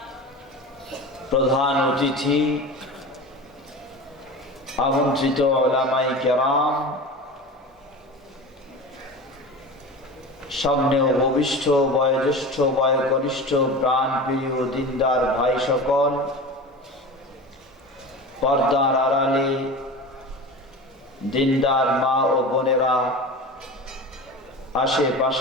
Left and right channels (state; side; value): normal; both; correlation 0.32